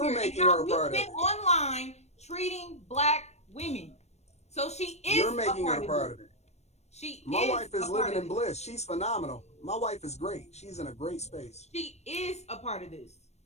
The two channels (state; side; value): late; right; 0.32 ms